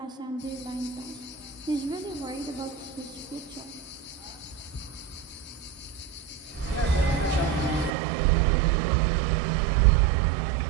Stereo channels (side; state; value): left; drops out; at 8.0 s